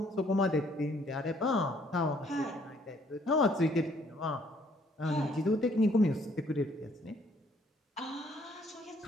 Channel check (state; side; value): normal; both; correlation 0.65